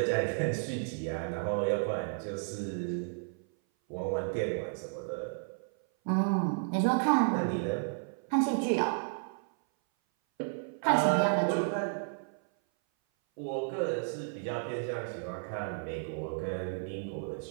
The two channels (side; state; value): left; silent; 56 dB below the other